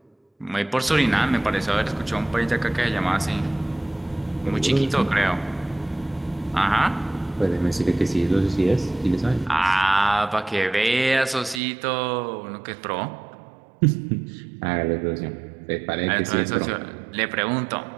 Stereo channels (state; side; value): drops out; left; at 11.6 s